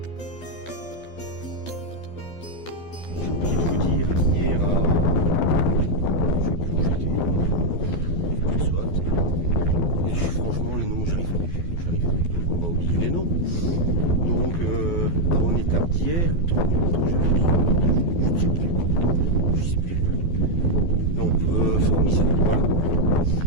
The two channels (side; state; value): right; late; 12 ms